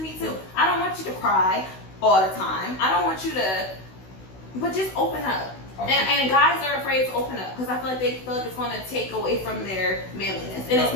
too. I don't want you to cry all the time. I don't want you to, but just open up. And guys are afraid to open up because I feel like they feel like it's going to take away from their manliness. And it's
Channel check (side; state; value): right; late; 16 ms